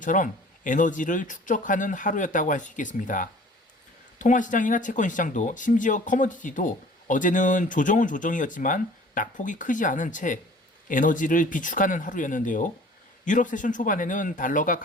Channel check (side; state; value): both; normal; correlation 0.49